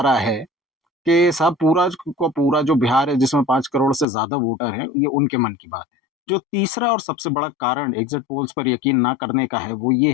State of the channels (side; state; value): right; drops out; at 4.0 s